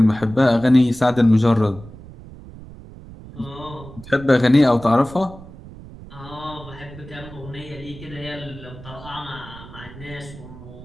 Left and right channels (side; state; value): right; noise; rumble, 17 dB below the sound